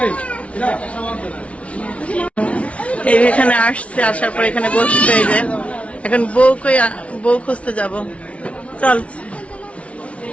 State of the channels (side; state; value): right; late; 0.063 ms